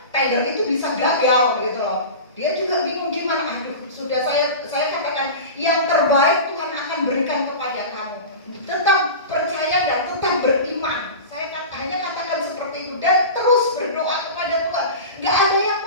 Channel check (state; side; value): inverted; both; correlation -0.30